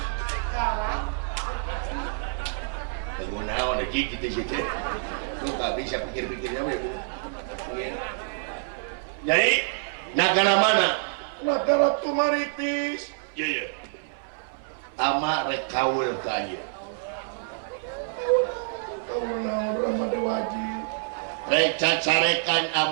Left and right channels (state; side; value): silent; left; 57 dB below the other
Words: gunaon aja gitu sih lu gak bisa pikir-pikirnya we bu jadi negara mana negara Tumaritis iya ama rek kaul ka ieu kaul naon Rama Dewaji rek cacarekan